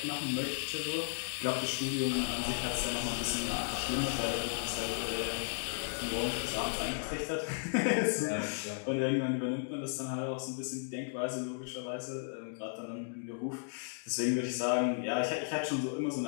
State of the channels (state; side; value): silent; right; digital silence